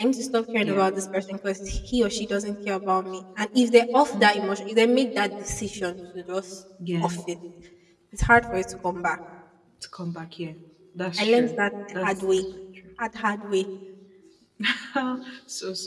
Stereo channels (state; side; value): identical; both; correlation 1.00